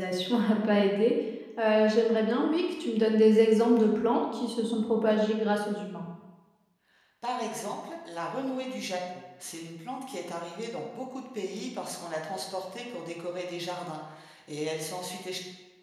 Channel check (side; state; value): both; identical; correlation 1.00